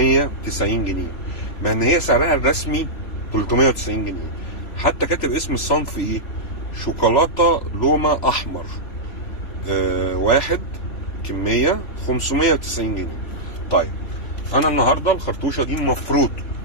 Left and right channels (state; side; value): late; right; 3.5 ms